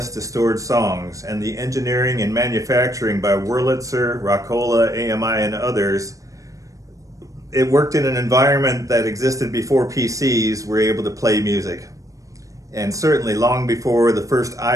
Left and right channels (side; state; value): left; late; 0.16 ms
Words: to stored songs, and the engineering and manufacturing by Wurlitzer, Rockola, AMI, and others, it worked in an environment that existed before PCs were able to play music. And certainly long before the first